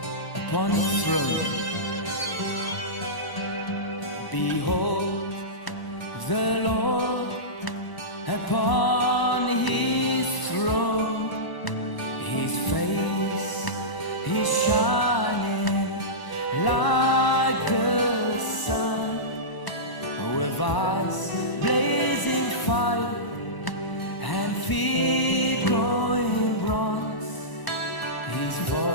upon his throne. Behold the Lord upon his throne. His face is shining like the sun, with eyes blazing fire and feet glowing bronze. His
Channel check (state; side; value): late; right; 1.0 ms